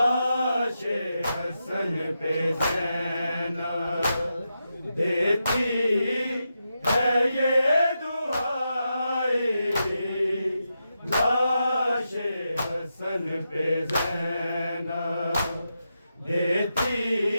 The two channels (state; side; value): inverted; both; correlation -0.87